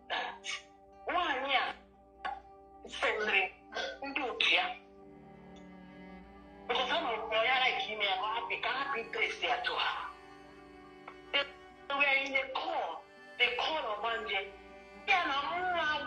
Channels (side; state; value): both; identical; correlation 1.00